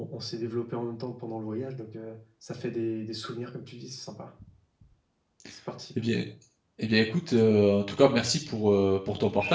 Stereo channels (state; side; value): identical; both; correlation 1.00